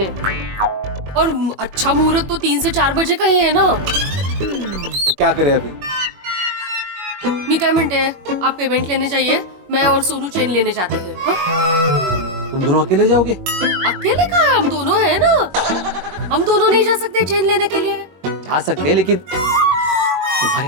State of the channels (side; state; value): left; late; 21 ms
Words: और अच्छा मुहूर्त तो 3 से 4 बजे का ही है ना। क्या करें अभी? मी क्या मिनट है, आप पेमेंट लेने जाइए, मैं और सोनू चेन लेने जाते हैं। हाँ? तुम दोनों अकेले जाओगे? अकेले कहाँ है, हम दोनों हैं ना। हम दोनों नहीं जा सकते चेन लेने के लिए? जा सकते हैं, लेकिन तुम्हारे